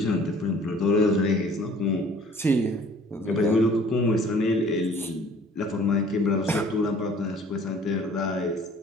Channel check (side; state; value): both; normal; correlation 0.52